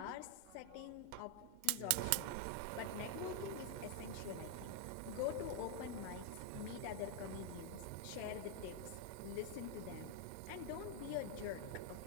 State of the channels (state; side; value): different; both; correlation 0.00